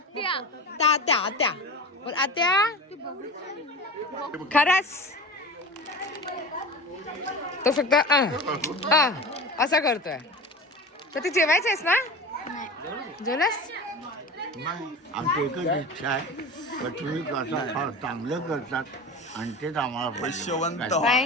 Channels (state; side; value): normal; both; correlation 0.31